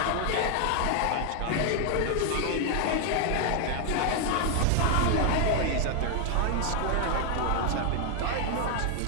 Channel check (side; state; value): both; different; correlation 0.00